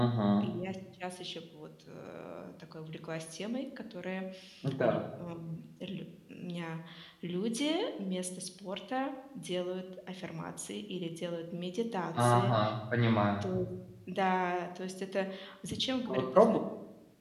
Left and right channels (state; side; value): identical; both; correlation 1.00